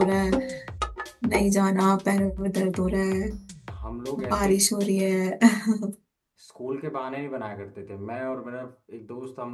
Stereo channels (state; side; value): identical; both; correlation 1.00